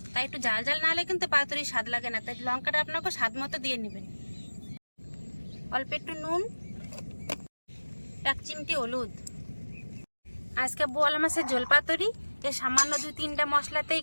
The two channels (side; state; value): both; inverted; correlation -1.00